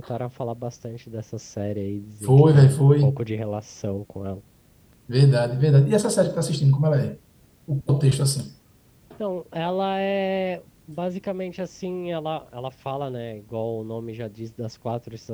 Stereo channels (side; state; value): both; identical; correlation 1.00